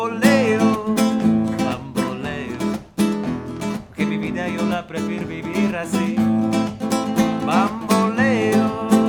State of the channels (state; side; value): identical; both; correlation 1.00